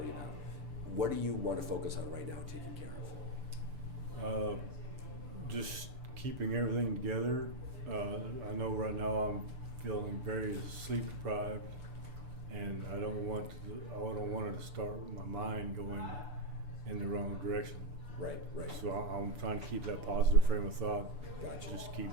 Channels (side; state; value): left; late; 6.9 ms